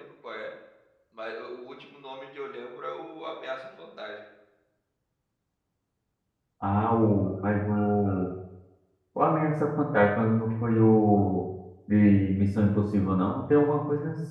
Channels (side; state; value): both; identical; correlation 1.00